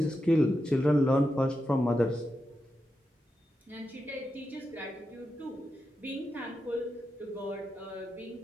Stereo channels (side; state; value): both; normal; correlation 0.88